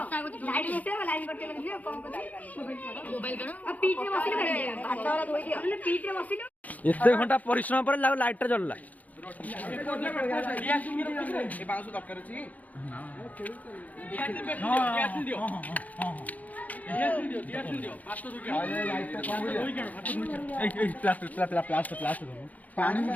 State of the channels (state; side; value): late; right; 0.077 ms